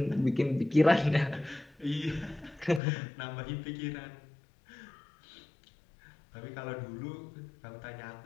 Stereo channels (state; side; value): drops out; right; at 2.8 s